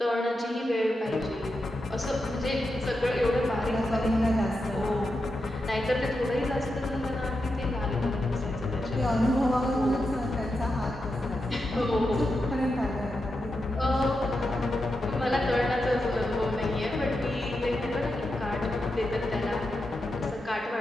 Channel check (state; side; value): normal; both; correlation 0.87